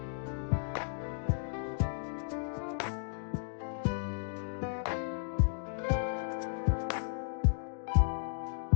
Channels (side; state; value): right; silent; digital silence